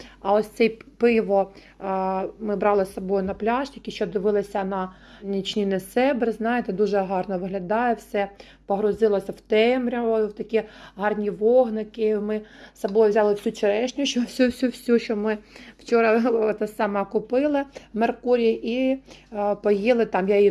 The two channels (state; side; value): identical; both; correlation 1.00